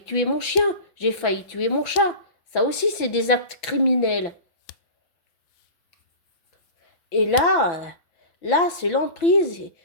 tuer mon chien, j'ai failli tuer mon chat. Ça aussi, c'est des actes criminels. Et là, c'est l'emprise.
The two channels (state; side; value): late; right; 6.0 ms